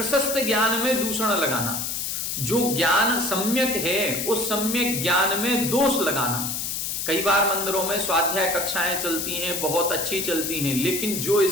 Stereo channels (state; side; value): noise; left; hiss, 3 dB below the sound